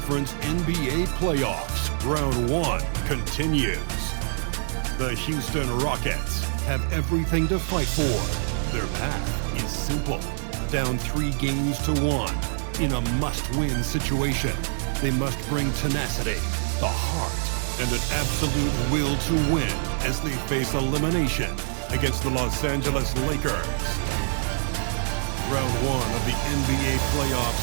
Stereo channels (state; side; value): silent; left; digital silence